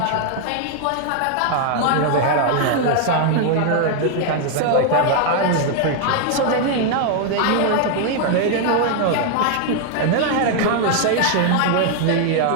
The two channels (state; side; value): different; both; correlation 0.00